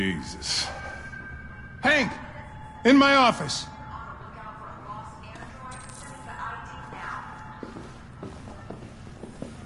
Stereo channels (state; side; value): identical; both; correlation 1.00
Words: Hank! In my office!